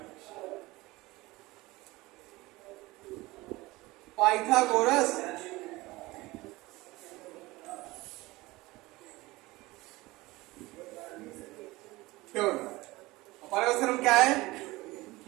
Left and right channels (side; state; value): left; quieter; 20.6 dB